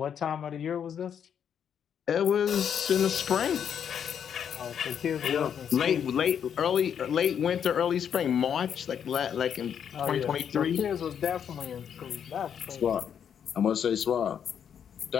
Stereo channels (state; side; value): quieter; right; 8.3 dB